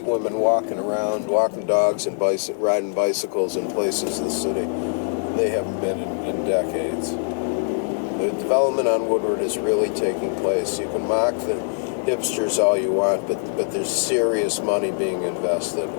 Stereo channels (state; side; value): silent; right; digital silence